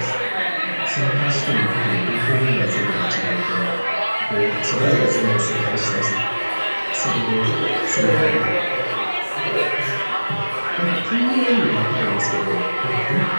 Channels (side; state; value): both; inverted; correlation -1.00